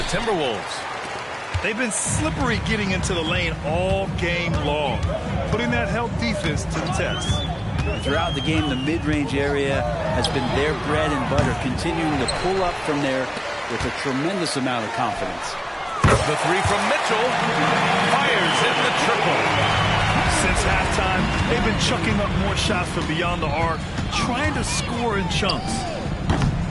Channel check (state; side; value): identical; both; correlation 1.00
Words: Timberwolves. They've been slippery getting into the lane all game long, putting that help defense to the test. Throughout the game, the mid-range area has been their bread and butter, continuing to pull up from there with a tremendous amount of confidence. The three from Mitchell fires in the triple. Since halftime, they've been chucking up more shots from beyond the arc, trying to score in chunks.